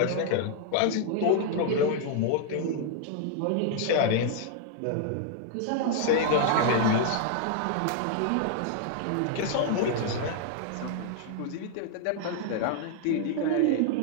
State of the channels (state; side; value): different; both; correlation 0.00